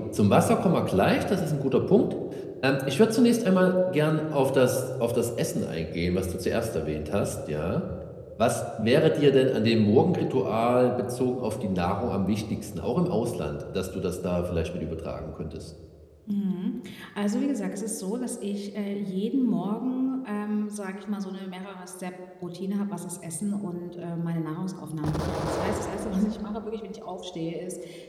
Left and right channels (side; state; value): both; identical; correlation 1.00